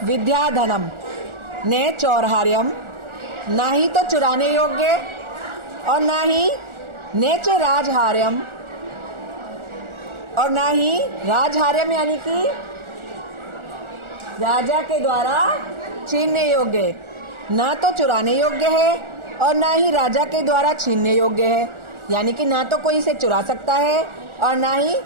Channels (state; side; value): late; left; 1.4 ms